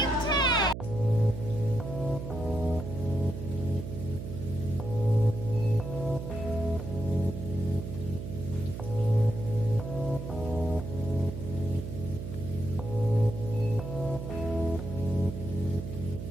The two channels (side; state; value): right; noise; hum, 7 dB below the sound